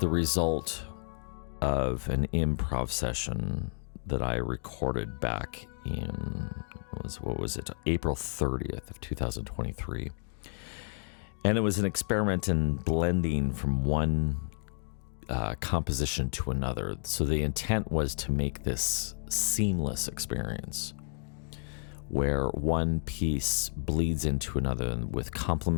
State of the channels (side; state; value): right; silent; 57 dB below the other